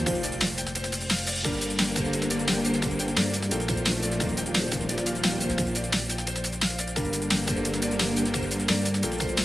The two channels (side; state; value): both; normal; correlation 0.95